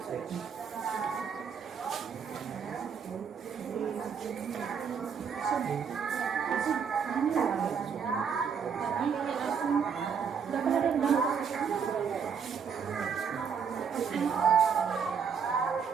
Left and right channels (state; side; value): quieter; left; 6.6 dB